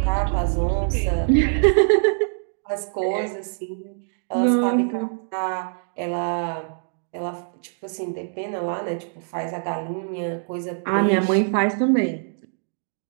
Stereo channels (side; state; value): left; silent; digital silence